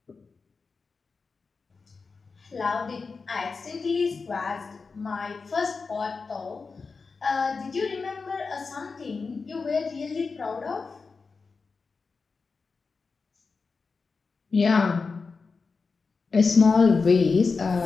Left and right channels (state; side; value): quieter; right; 4.6 dB